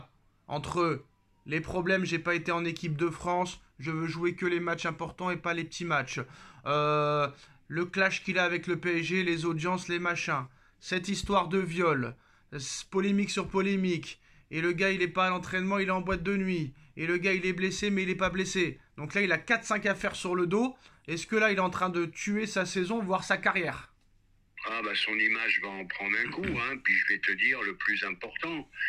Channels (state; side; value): identical; both; correlation 1.00